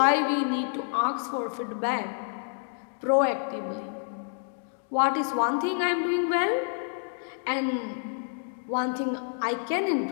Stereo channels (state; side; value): silent; right; 59 dB below the other